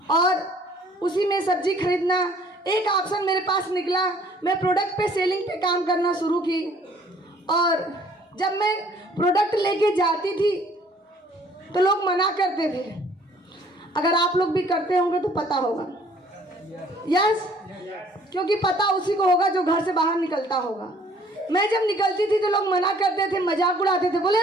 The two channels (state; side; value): normal; both; correlation 0.58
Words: और उसी में सब्जी खरीदना एक ऑप्शन मेरे पास निकला। मैं प्रोडक्ट पे सेलिंग पे काम करना शुरू की, और जब मैं प्रोडक्ट लेके जाती थी तो लोग मना करते थे। अगर आप लोग भी करते होंगे तो पता होगा। यस, क्योंकि पता उसी को होगा जो घर से बाहर निकलता होगा। मैं जब निकलती थी तो लोग मना करते थे, मजाक उड़ाते थे, बोले